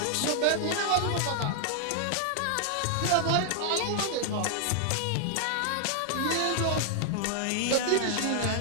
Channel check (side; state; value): both; different; correlation 0.00